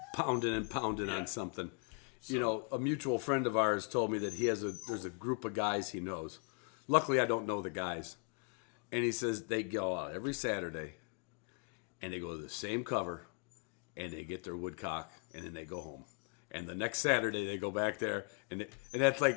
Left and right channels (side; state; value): right; quieter; 37.9 dB